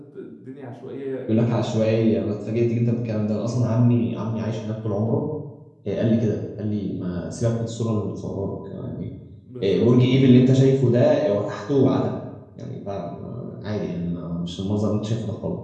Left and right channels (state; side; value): identical; both; correlation 1.00